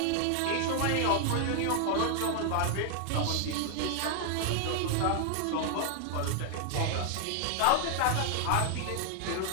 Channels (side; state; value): both; different; correlation 0.00